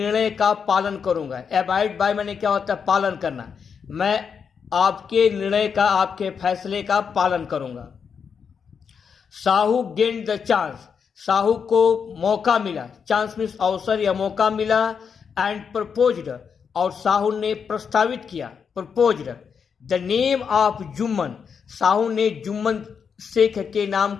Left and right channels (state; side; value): quieter; right; 6.5 dB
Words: का पालन करूंगा। एबाइड बाय मैंने क्या होता है, पालन करना। मैं आपके निर्णय का, आपके फैसले का पालन करूंगा। Sahu gain the chance, Sahu को मौका मिला, चांस मीन्स अवसर या मौका मिला। एंड प्रपोज्ड, और साहू ने प्रस्तावित किया, proposed the name of Jumman, Sahu ने जुम्मन शेख के नाम